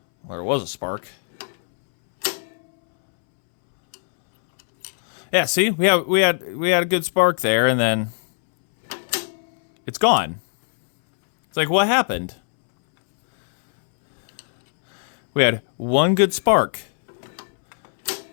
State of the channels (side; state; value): right; silent; 65 dB below the other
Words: there was a spark. Yeah, see? We had a good spark there, and then... It's gone. It's like, what happened? We had one good spark.